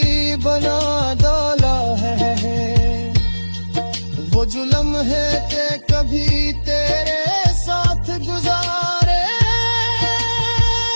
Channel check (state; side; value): inverted; both; correlation -1.00